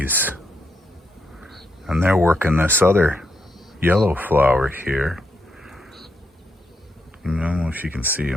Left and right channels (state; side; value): normal; both; correlation 0.80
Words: And they're working this other yellow flower here. I don't know if you can see